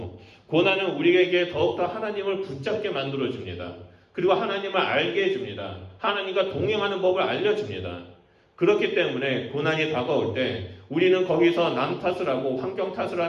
고난은 우리에게 더욱더 하나님을 붙잡게 만들어줍니다. 그리고 하나님을 알게 해줍니다. 하나님과 동행하는 법을 알려줍니다. 그렇기 때문에 고난이 다가올 때 우리는 거기서 남 탓을 하고 환경 탓을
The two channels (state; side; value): identical; both; correlation 1.00